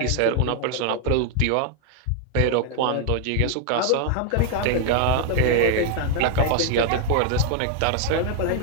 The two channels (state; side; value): different; both; correlation 0.00